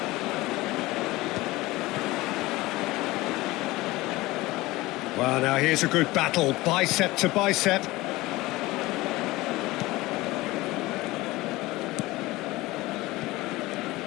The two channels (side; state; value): right; quieter; 19.6 dB